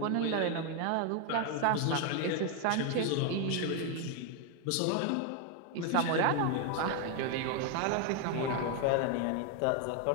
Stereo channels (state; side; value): different; both; correlation 0.01